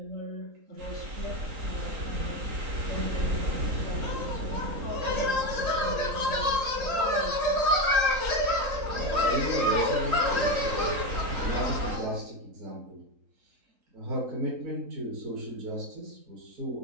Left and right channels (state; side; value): late; left; 3.8 ms